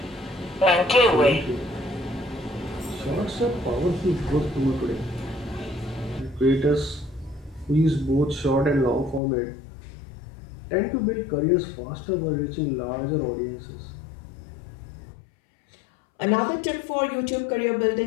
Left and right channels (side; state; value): right; drops out; at 9.2 s